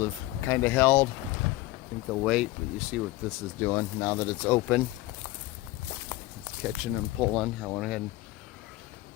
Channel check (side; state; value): right; quieter; 18.1 dB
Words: have kind of held. I think they'll wait, but you see what this is doing now that it's open. It's catching and pulling. I went ahead and